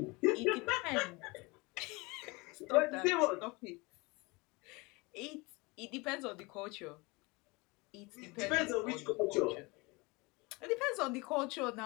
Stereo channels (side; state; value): right; quieter; 25.7 dB